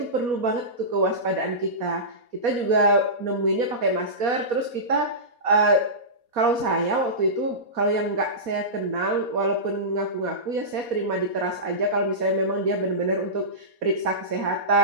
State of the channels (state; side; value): late; left; 4.2 ms